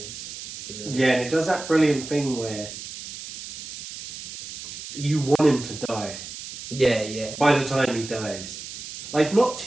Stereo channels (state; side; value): noise; right; hiss, 11 dB below the sound